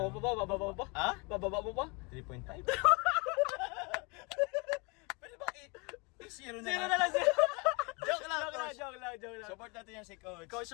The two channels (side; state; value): right; quieter; 29.7 dB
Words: pa ba? Bababa mo pa? Ha? Bababa mo pa? 3.5. Pwede ba i-zero na Sino lang? na lang siya? Joke lang, Coach. Joke lang. Support natin yan si Coach. Coach